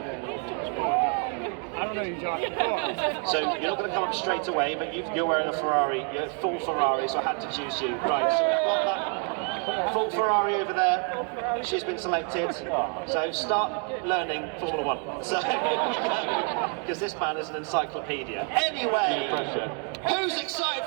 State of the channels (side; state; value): left; quieter; 39.1 dB